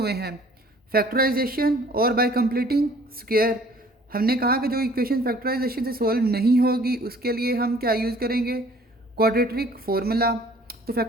हैं, फैक्टराइजेशन और बाय कंप्लीटिंग स्क्वायर। हमने कहा कि जो इक्वेशन फैक्टराइजेशन से सॉल्व नहीं होगी, उसके लिए हम क्या यूज़ करेंगे? Quadratic formula. तो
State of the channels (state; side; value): normal; both; correlation 0.54